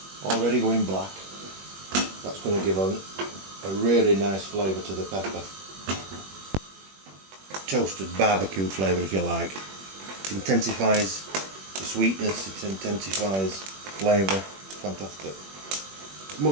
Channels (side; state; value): left; late; 21 ms